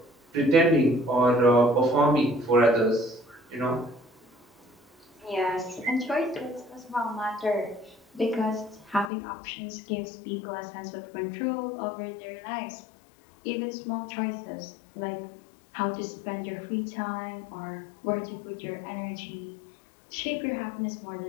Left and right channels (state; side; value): drops out; right; at 9.1 s